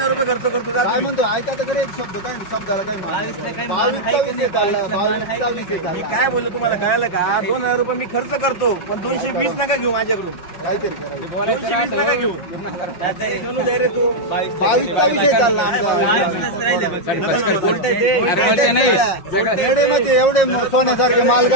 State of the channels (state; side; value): late; right; 5.6 ms